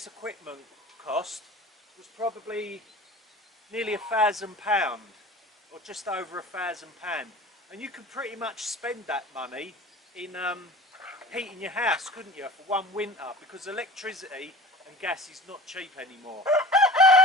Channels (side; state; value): both; normal; correlation 0.39